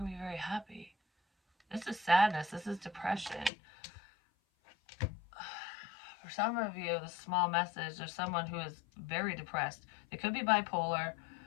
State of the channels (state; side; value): drops out; right; at 3.5 s